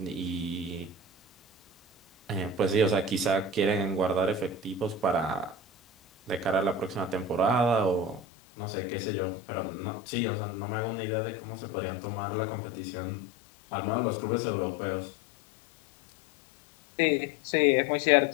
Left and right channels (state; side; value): drops out; right; at 8.2 s